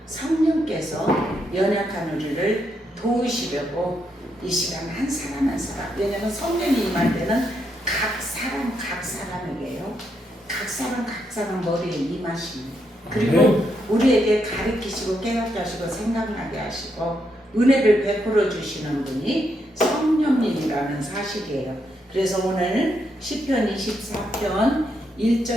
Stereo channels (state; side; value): normal; both; correlation 0.79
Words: 성령께서 연약한 우리를 도우시려고 이 시간 한 사람 한 사람, 왜냐하면 성령이 임할 때는 각 사람에게요, 각 사람 머리에 임하십니다. 그리고 우리에게 가르치시고 깨닫게 하시고 생각나게 하시고 은혜를 베풀어 주시는 분이 성령님이라는 사실이에요. 그래서 오늘 시편 24편